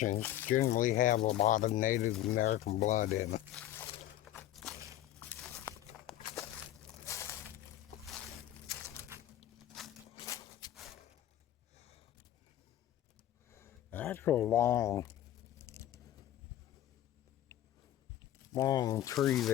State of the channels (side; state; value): right; quieter; 12.9 dB